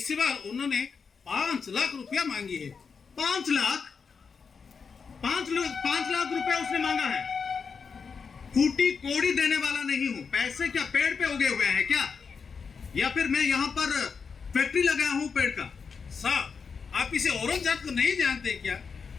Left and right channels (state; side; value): quieter; right; 5.6 dB